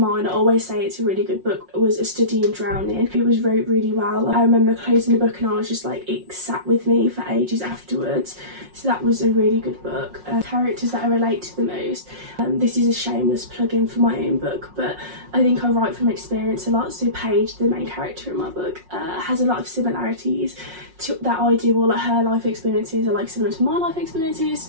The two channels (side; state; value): left; late; 5.5 ms